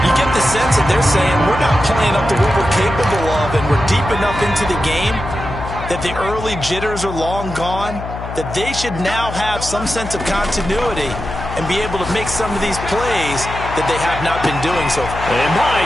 You get the sense that they're saying we're not playing up to what we're capable of, and we're deep enough into the game that the early jitters are long gone, that they should now have some sense of continuity and be able to make some of these plays that they have not been doing so far. And my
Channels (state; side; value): noise; left; hum, 9 dB below the sound